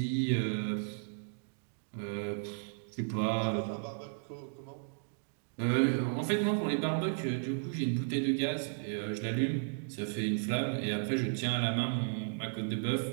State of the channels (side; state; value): left; silent; digital silence